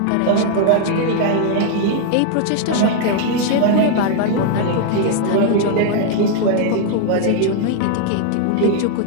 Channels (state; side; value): different; both; correlation 0.00